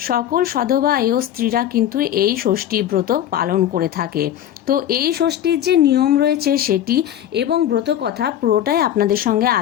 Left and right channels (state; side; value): quieter; right; 11.1 dB